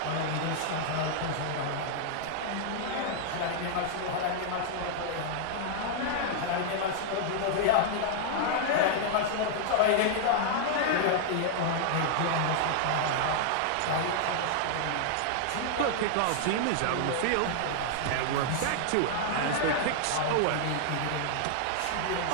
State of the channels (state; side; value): different; both; correlation -0.01